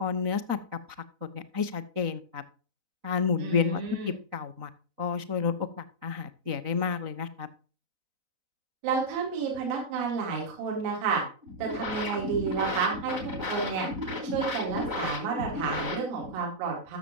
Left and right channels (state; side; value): late; left; 4.0 ms